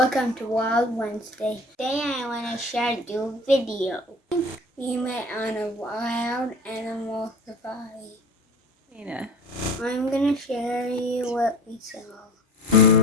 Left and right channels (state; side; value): normal; both; correlation 0.40